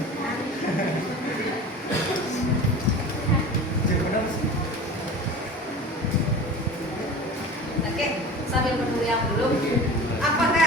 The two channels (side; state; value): both; normal; correlation 0.35